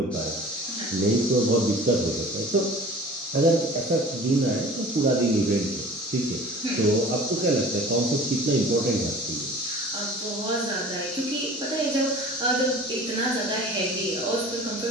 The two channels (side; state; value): both; normal; correlation 0.43